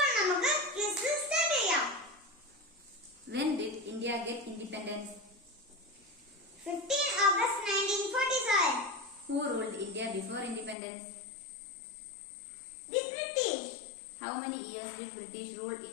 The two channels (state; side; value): drops out; right; at 10.8 s